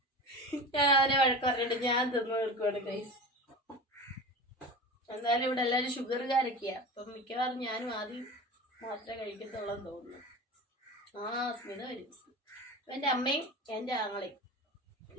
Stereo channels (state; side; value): normal; both; correlation 0.31